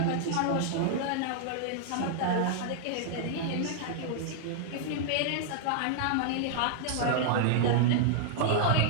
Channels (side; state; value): both; different; correlation -0.01